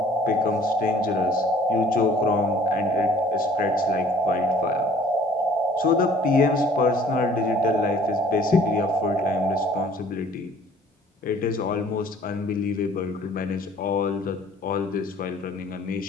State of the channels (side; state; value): both; normal; correlation 0.54